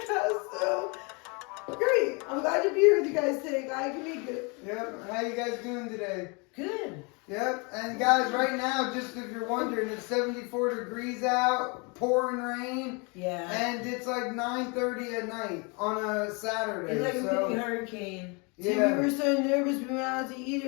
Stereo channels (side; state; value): right; quieter; 31.2 dB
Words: so great. I'm glad to be here with you guys today. Glad I can make it. Yep. How you guys doing today? Good. Yep. And guys, right now, just if you're wondering, it's 74 degrees out, pouring rain. Yeah. And it's like 9:30 at night on a Saturday. It's like a mini hurricane. Yeah. See, we were so nervous. We went out to eat